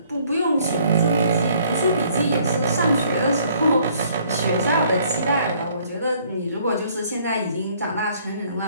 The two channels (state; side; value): inverted; both; correlation -0.62